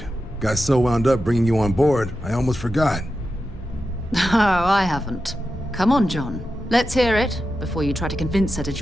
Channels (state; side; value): normal; both; correlation 0.90